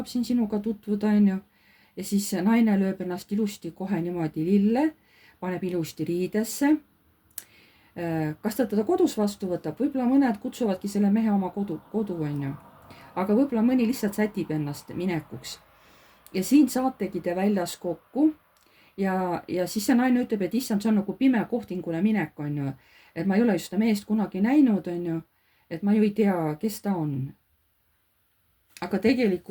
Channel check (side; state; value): both; identical; correlation 1.00